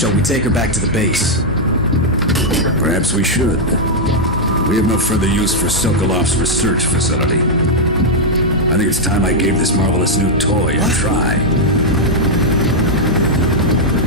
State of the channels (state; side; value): normal; both; correlation -0.02